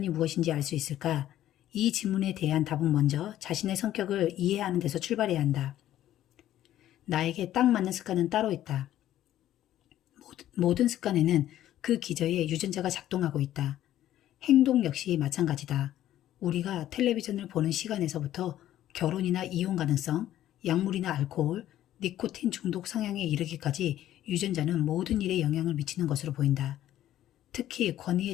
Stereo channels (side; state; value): right; quieter; 12.7 dB